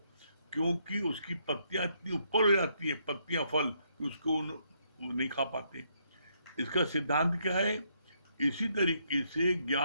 क्योंकि उसकी पत्तियां इतनी ऊपर हो जाती है, पत्तियां फल, कि उसको वो नहीं खा पाते। इसका सिद्धांत क्या है? इसी तरीके से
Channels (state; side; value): inverted; both; correlation -0.73